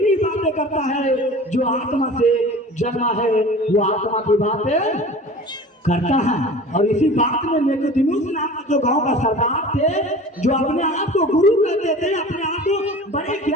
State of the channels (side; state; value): both; normal; correlation 0.40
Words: की बातें करता है, जो आत्मा से जन्मा है वो आत्मा की बातें करता है। और इसी बात में निकोदेमुस नाम का जो गांव का सरदार थे, जो अपने आप को गुरु कहते थे, अपने आप को बड़े